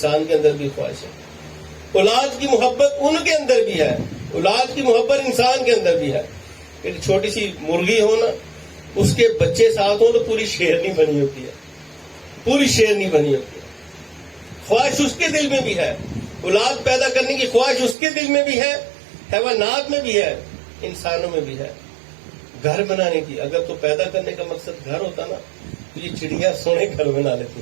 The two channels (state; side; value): drops out; left; at 17.9 s